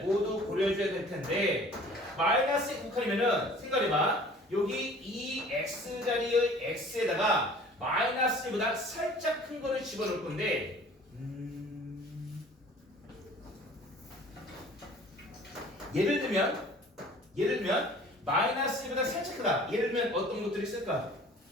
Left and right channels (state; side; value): normal; both; correlation 0.49